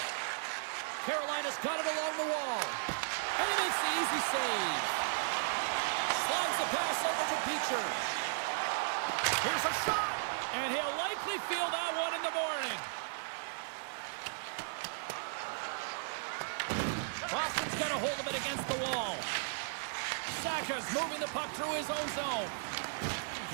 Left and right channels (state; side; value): silent; left; digital silence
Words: Carolina's got it along the wall. And he makes the easy save. Slides the pass over to Beecher. Here's a shot. And he'll likely feel that one in the morning. Boston's got a hold of it against the wall. Saka's moving the puck through his own zone.